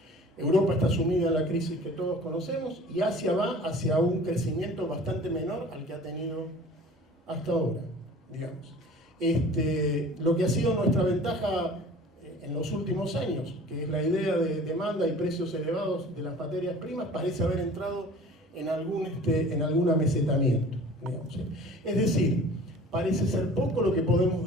Europa está sumida en la crisis que todos conocemos y Asia va hacia un crecimiento bastante menor al que ha tenido hasta ahora, digamos. Lo que ha sido nuestra ventaja en los últimos años, que es la idea de demanda y precios elevados de las materias primas, parece haber entrado en algún amesetamiento, digamos. Es decir, parece ser poco lo que podemos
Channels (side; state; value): both; normal; correlation 0.45